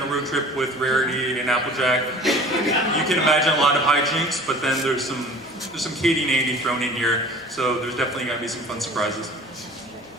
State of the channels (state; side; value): normal; both; correlation 0.45